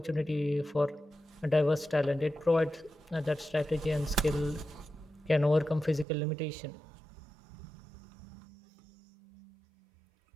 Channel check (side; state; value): left; drops out; at 6.1 s